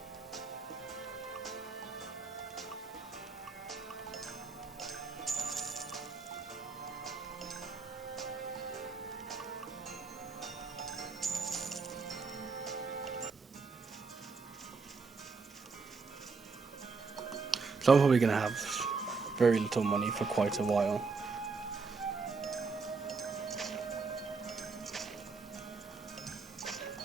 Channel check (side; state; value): left; quieter; 4.5 dB